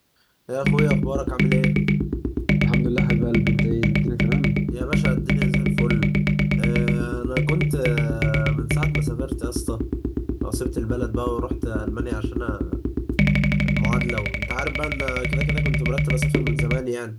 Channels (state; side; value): identical; both; correlation 1.00